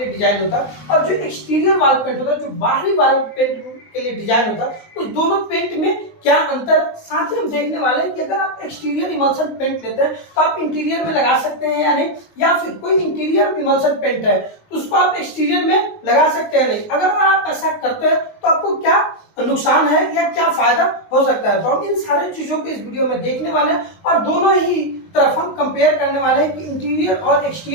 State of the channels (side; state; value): right; late; 19 ms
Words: लिए डिजाइन होता है, और जो एक्सटीरियर वॉल पेंट होता है, जो बाहरी वॉल पेंट के लिए डिजाइन होता है, उस दोनों पेंट में क्या अंतर। साथ ही हम देखने वाले हैं कि अगर आप एक्सटीरियर इमल्शन पेंट लेते हैं तो आप इंटीरियर में लगा सकते हैं या नहीं, या फिर कोई इंटीरियर इमल्शन पेंट है तो उसको आप एक्सटीरियर में लगा सकते हैं नहीं। अगर आप ऐसा करते हैं तो आपको क्या नुकसान है या क्या फायदा हो सकता है, तो हम इन सारी चीजों को इस वीडियो में देखने वाले हैं और दोनों ही तरफ हम कंपेयर करने वाले हैं कि इंटीरियर और